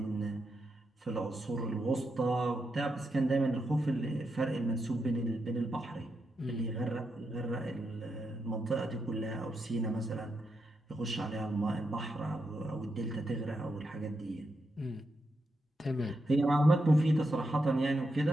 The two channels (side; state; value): both; normal; correlation 0.84